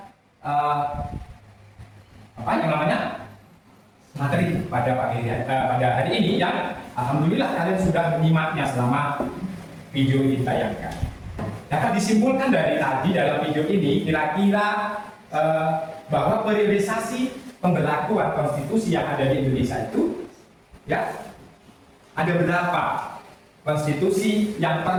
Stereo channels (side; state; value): both; identical; correlation 1.00